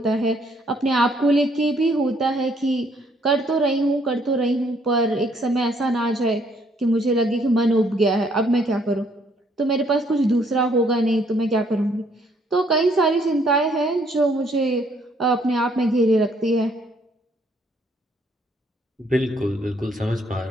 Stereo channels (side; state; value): both; normal; correlation 0.67